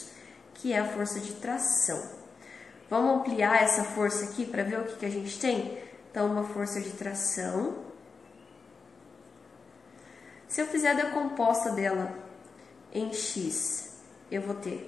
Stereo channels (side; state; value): right; quieter; 4.8 dB